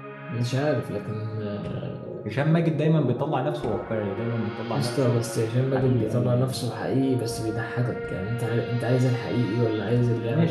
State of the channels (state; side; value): identical; both; correlation 1.00